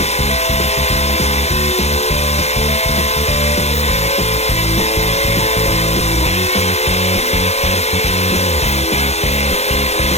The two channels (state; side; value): late; right; 0.31 ms